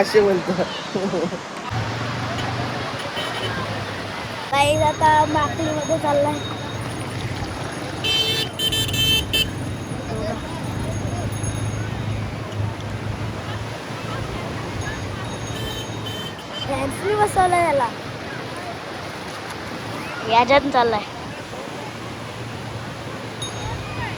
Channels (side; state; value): both; identical; correlation 1.00